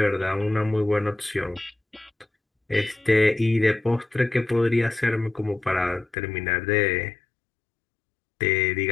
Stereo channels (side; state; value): right; drops out; at 6.2 s